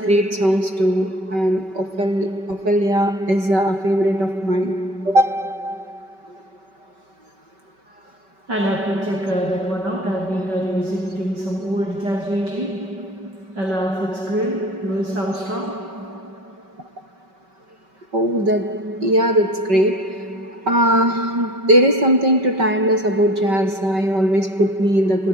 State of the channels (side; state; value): left; late; 5.2 ms